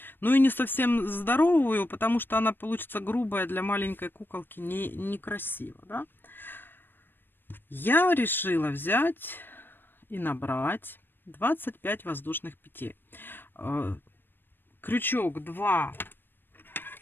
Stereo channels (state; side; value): late; right; 0.096 ms